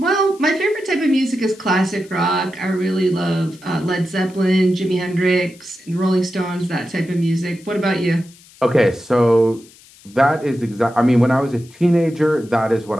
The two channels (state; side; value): noise; left; hiss, 25 dB below the sound